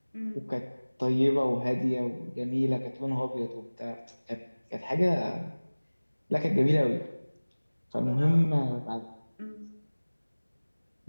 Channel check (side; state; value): both; inverted; correlation -1.00